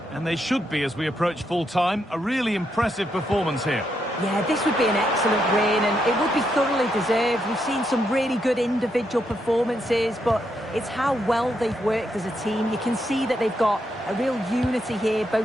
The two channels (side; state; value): both; normal; correlation 0.80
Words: and they should be as we approach full-time. A really impressive performance here. Yeah, this would be an excellent win, and it would be thoroughly deserved. We've seen some really good individual performances, but it's how well they've worked as a team. You can see that they've got a real unity here,